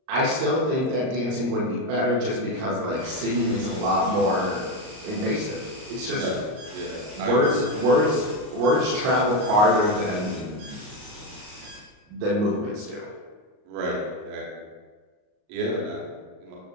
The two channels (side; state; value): left; late; 38 ms